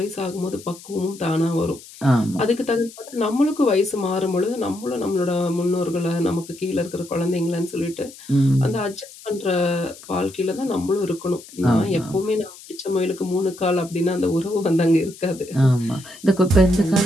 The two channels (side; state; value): left; noise; hiss, 19 dB below the sound